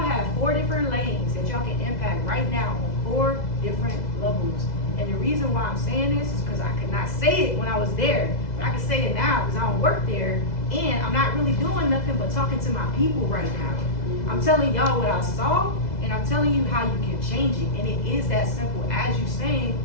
4 different lanes that y'all can impact right now on 4 different levels. And the reason why I'm saying this is because I could not say it when I was there, but I can say it now because I don't work there, and I'm not really doing nothing but talking to my people right now. I'm telling y'all what I saw, and I'm telling you how you can change it. And it is that simple as you saying,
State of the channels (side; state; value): right; late; 2.0 ms